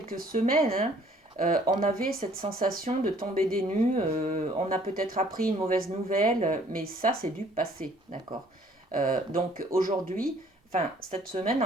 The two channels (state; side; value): normal; both; correlation 0.59